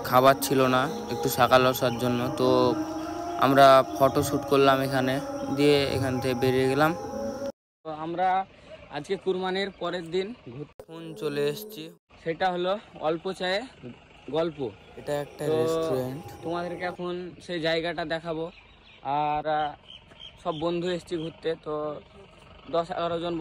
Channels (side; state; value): both; identical; correlation 1.00